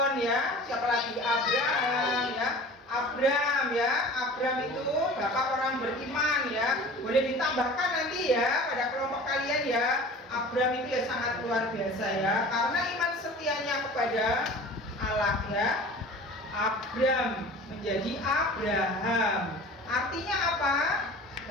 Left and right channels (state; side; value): normal; both; correlation 0.41